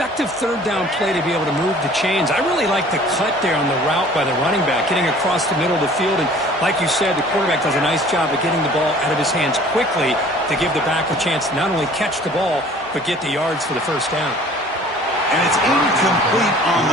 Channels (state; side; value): normal; both; correlation 0.50